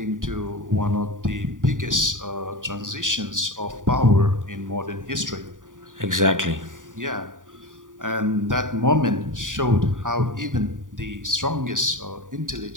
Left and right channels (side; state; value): left; late; 0.88 ms